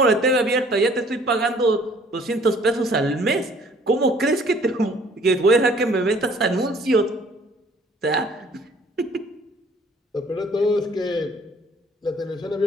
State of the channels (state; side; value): normal; both; correlation 0.56